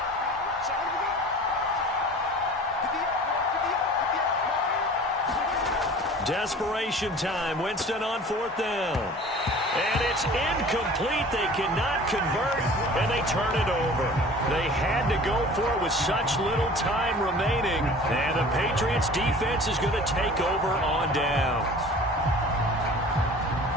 Desperation time. Winston on fourth down. And it's incomplete. They cannot convert, and they turn it over. They had to go for it with such little time remaining, and the Patriots defense is going to take over on downs.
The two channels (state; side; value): normal; both; correlation 0.44